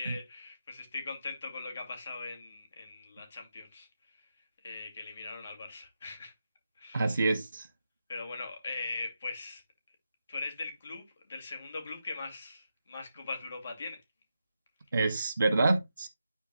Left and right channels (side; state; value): both; inverted; correlation -0.87